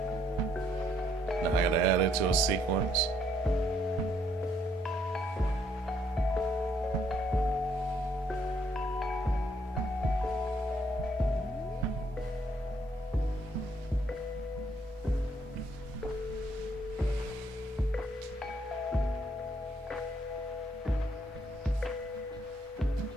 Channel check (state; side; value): normal; both; correlation 0.69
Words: Now I gotta add it to a sequence.